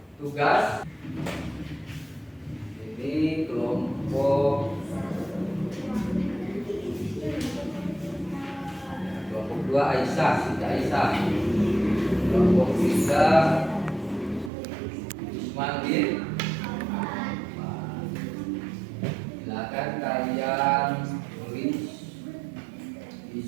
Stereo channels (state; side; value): drops out; left; at 14.5 s